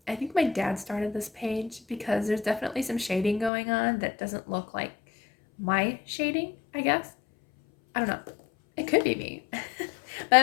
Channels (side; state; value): right; drops out; at 3.5 s